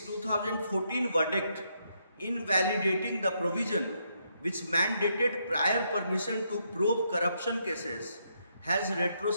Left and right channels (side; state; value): both; inverted; correlation -0.77